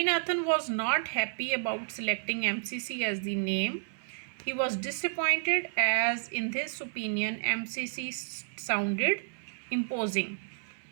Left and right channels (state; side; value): silent; left; 57 dB below the other